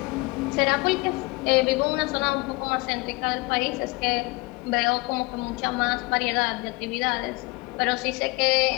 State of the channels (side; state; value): right; quieter; 24.8 dB